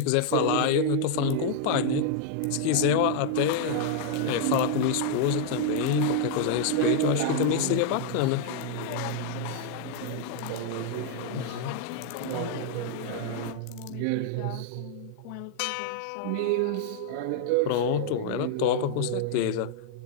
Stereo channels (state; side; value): different; both; correlation 0.00